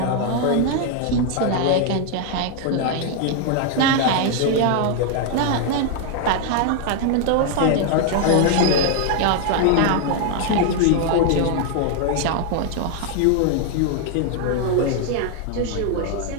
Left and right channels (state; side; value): different; both; correlation 0.00